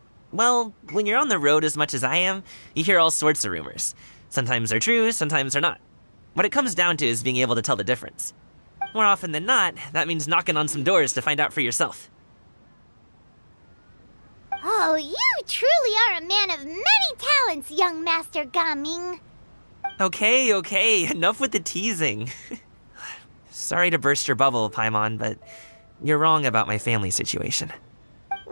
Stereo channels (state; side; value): inverted; both; correlation -1.00